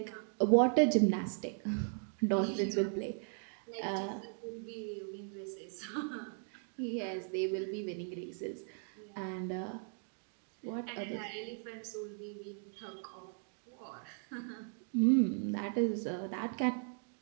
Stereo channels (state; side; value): silent; left; 53 dB below the other